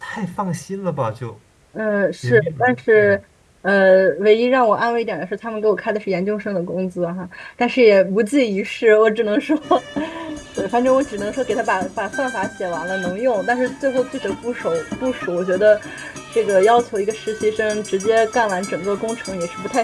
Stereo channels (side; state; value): both; identical; correlation 1.00